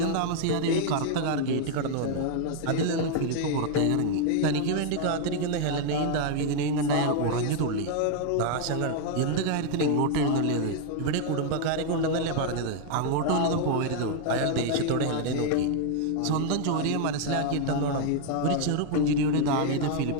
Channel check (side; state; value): both; different; correlation 0.00